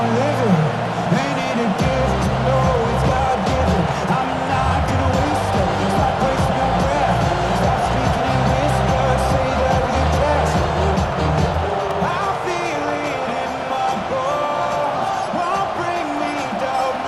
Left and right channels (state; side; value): identical; both; correlation 1.00